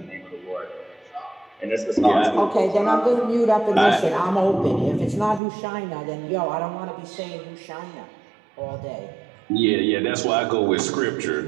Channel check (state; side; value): drops out; left; at 5.4 s